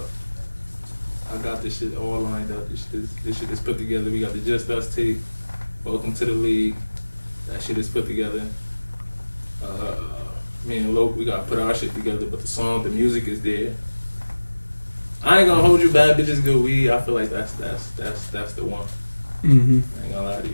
I got this shit all lined up. This shit is put together. We got the Just Us tape. Welcome to the League. That shit is put together. Me and Loke, we gotta put our shit together, but the music is there. I ain't gonna hold you, Bad Bitches Good Weed. I feel like that's the one. Mm-hmm. I ain't gonna lie to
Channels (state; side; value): inverted; both; correlation -1.00